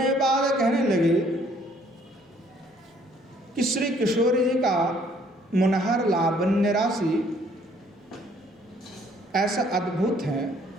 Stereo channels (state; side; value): normal; both; correlation 0.62